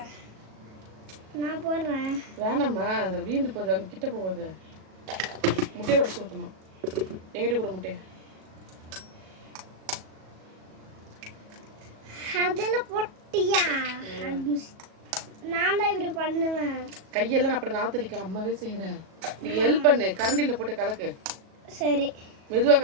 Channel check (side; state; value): left; late; 37 ms